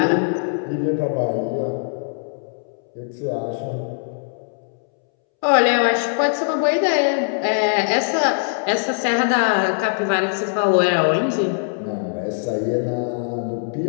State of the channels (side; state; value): right; silent; 65 dB below the other